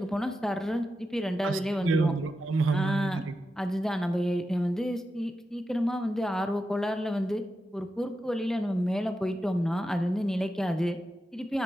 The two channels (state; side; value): normal; both; correlation 0.89